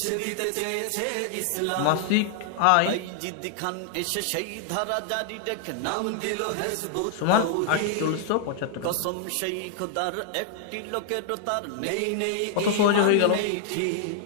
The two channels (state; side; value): different; both; correlation 0.00